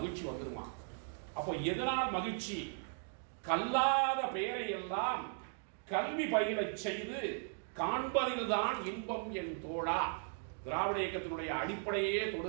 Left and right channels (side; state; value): left; silent; 53 dB below the other